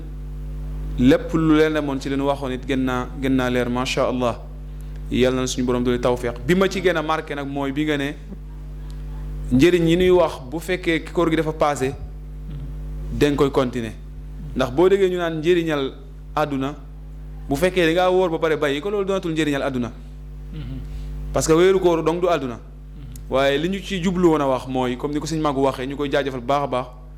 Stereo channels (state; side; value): identical; both; correlation 1.00